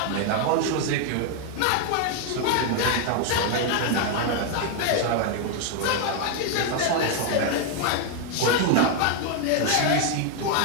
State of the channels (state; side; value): different; both; correlation 0.00